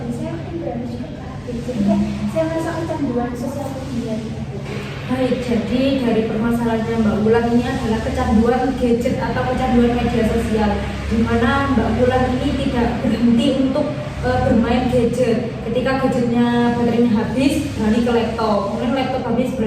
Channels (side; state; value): both; identical; correlation 1.00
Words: saya mungkin beralih juga ke HP. Jadi kayak saya merasa kecanduan sosial media gitu. Baik, jadi dari permasalahannya Mbak Wulan ini adalah kecanduan gadget atau kecanduan media sosial, di mana Mbak Wulan ini tidak berhenti untuk bermain gadget. Ketika gadgetnya baterainya habis, beralih ke laptop, kemudian laptop habis,